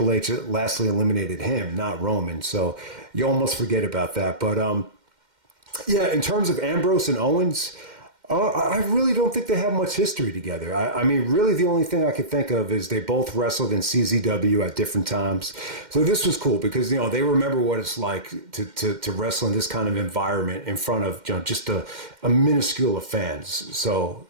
H lastly eliminated him, not Roman. So you almost forget about that. But yeah, in terms of Ambrose and Owens, I really don't think they have much history together. I mean, really the only thing I could think of is they both wrestled in CZW at different times. So this was cool because, they remember what it's like to wrestle in this kind of environment in front of, just a minuscule of fans. So,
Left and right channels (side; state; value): left; late; 2.1 ms